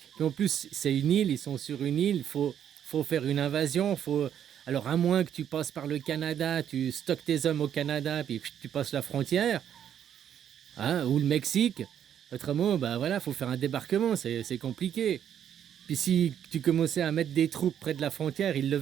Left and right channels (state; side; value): quieter; left; 9.5 dB